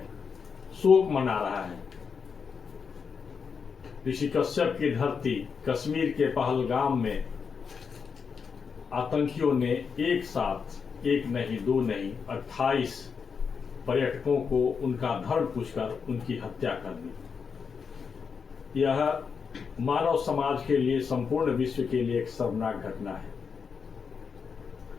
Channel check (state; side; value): quieter; right; 5.9 dB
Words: शोक मना रहा है। ऋषि कश्यप की धरती कश्मीर के पहलगाम में आतंकियों ने एक साथ एक नहीं दो नहीं 28 पर्यटकों को उनका धर्म पूछकर उनकी हत्या कर दी। यह मानव समाज के लिए, संपूर्ण विश्व के लिए एक शर्मनाक घटना है।